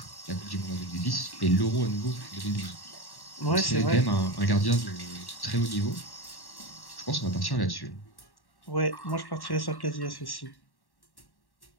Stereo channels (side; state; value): right; late; 1.1 ms